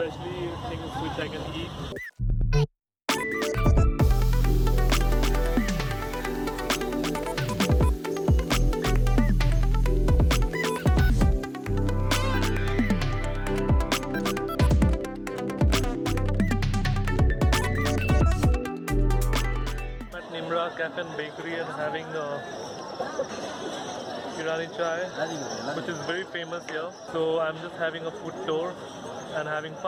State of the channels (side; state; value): both; identical; correlation 1.00